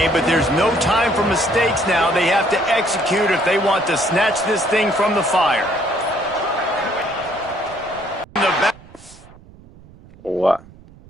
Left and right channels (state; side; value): noise; right; rumble, 23 dB below the sound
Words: but there's no time for mistakes now. They have to execute if they want to snatch this thing from the fire. What?